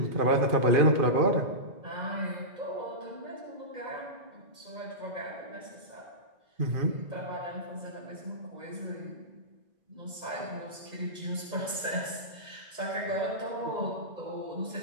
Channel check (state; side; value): late; left; 2.0 ms